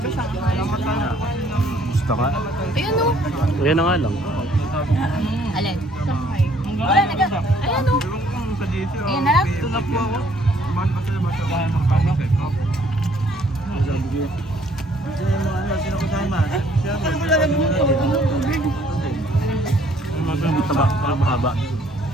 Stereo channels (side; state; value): both; normal; correlation 0.62